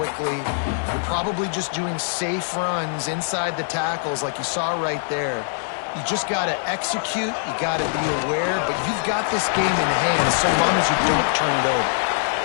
You're probably just doing safe runs inside the tackles like you saw right there. You just got to execute. You got to be aware, but you've got this game in hand so long as you don't turn it over.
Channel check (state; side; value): silent; right; digital silence